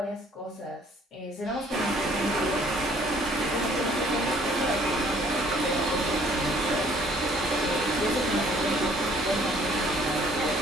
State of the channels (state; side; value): normal; both; correlation 0.59